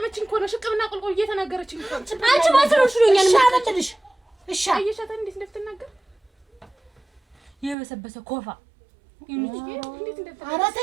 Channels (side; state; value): left; drops out; at 7.8 s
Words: እኮ ነው ሽቅብና ቁልቁል እየተናገረችኝ እኮ። አንቺ ማሰሮሽ ነኛል ሻለልሽ እሺ አየሻታ እንዴት እንደምትናገር የበሰበሰ ኮፋ ኧረ